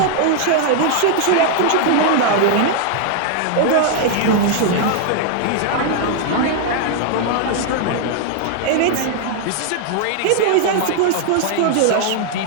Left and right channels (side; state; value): both; different; correlation 0.00